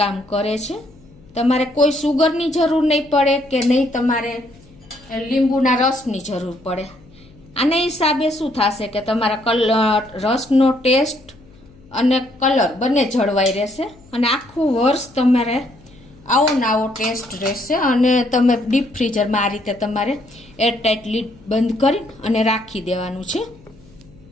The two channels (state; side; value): noise; left; hum, 25 dB below the sound